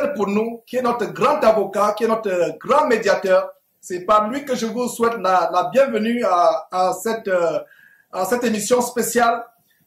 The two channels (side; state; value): both; identical; correlation 1.00